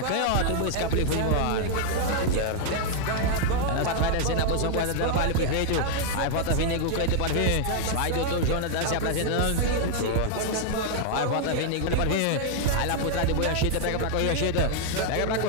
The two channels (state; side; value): different; both; correlation 0.00